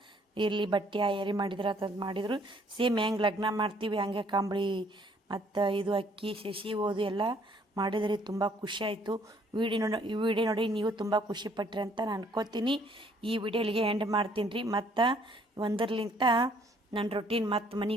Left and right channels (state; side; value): normal; both; correlation 0.63